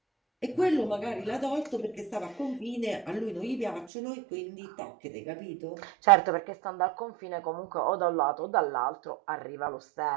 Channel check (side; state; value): left; drops out; at 3.9 s